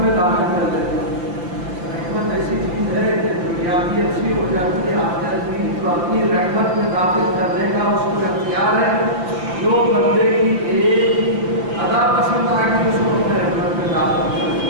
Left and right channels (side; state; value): left; late; 5.8 ms